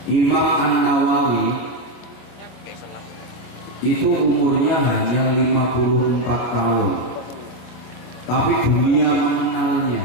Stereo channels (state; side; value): late; right; 25 ms